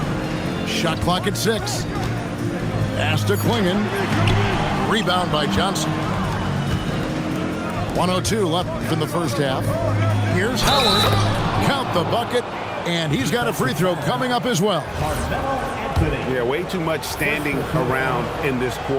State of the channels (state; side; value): identical; both; correlation 1.00